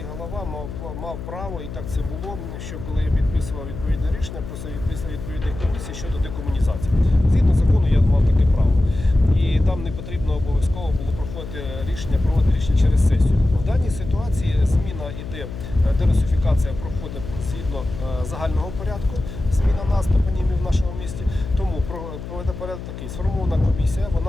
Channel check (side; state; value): left; noise; hum, 10 dB below the sound